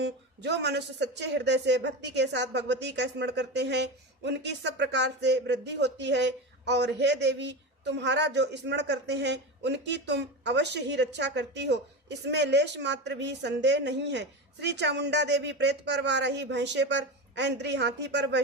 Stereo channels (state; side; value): normal; both; correlation 0.22